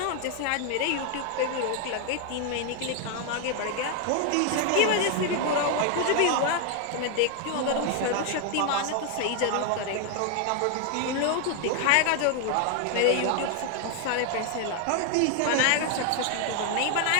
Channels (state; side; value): different; both; correlation 0.00